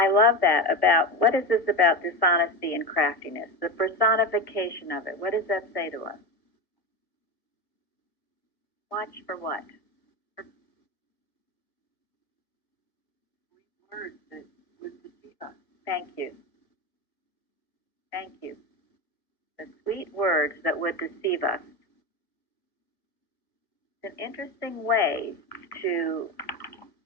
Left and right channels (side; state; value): right; late; 1.5 ms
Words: love that about, what is this about dishonesty and craftiness? The personification of it. What does that say to us? Watch for what? Words that would deceive us. Thank you. Thank you. The sweet words that would deceive us. It's an interesting way to